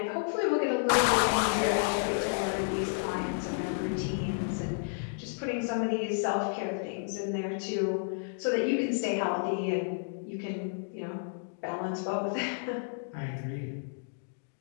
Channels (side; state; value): right; silent; digital silence